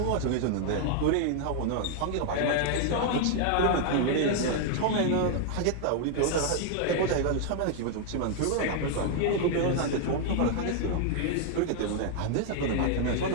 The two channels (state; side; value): different; both; correlation 0.00